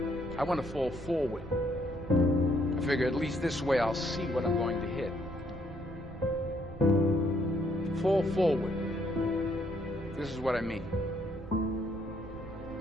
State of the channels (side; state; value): right; noise; rumble, 14 dB below the sound